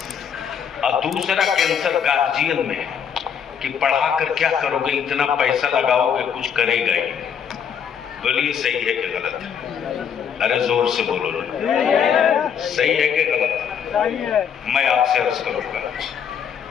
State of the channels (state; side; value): quieter; right; 7.7 dB